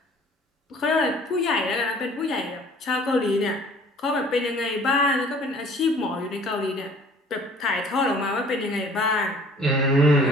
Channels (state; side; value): normal; both; correlation 0.52